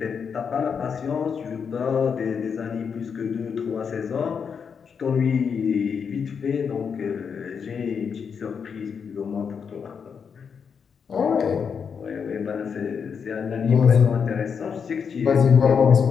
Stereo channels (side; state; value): right; quieter; 6.5 dB